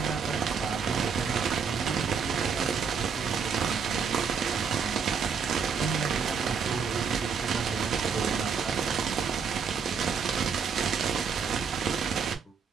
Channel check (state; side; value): quieter; left; 6.1 dB